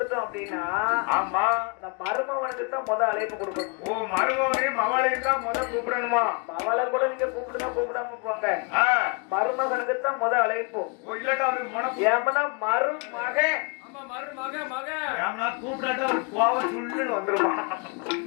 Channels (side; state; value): right; quieter; 33.1 dB